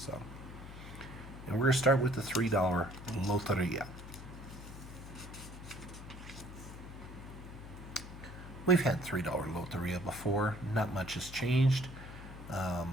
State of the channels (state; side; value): noise; left; hum, 13 dB below the sound